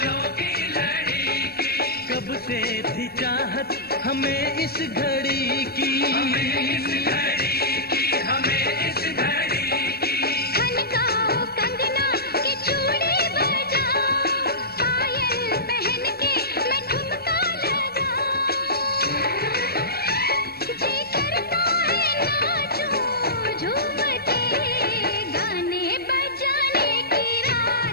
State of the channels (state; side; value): late; right; 0.46 ms